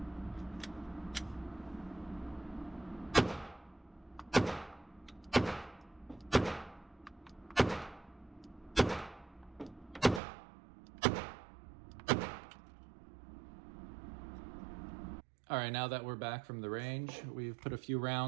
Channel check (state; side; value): drops out; left; at 10.2 s